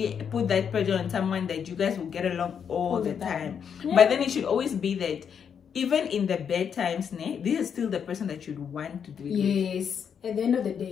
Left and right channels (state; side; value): quieter; right; 7.5 dB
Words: put that pressure on someone that you guys will get along all the time. Yeah. But then it should always be that even in the bad times, this is still the person that you'd want to do it with. Yes. At the end of the